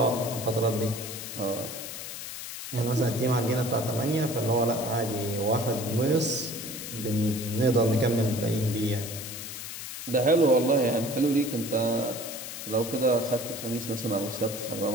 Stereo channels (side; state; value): left; noise; hiss, 8 dB below the sound